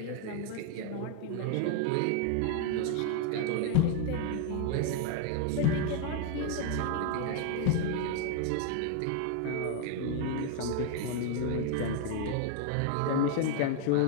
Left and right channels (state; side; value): different; both; correlation 0.00